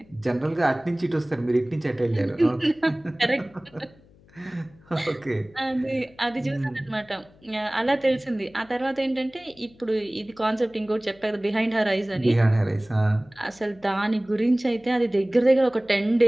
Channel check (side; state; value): left; noise; hum, 27 dB below the sound